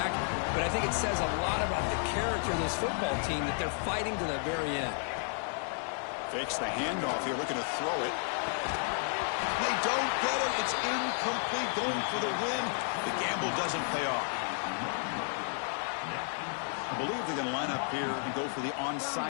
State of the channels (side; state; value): right; silent; 56 dB below the other